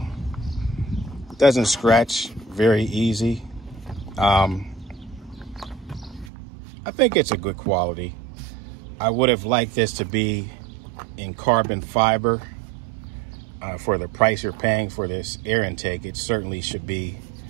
Doesn't scratch very easy. I think it's a good quality. I would have liked this to be in carbon fiber. For the price you're paying for this air intake, it certainly should be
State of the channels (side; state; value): left; drops out; at 6.3 s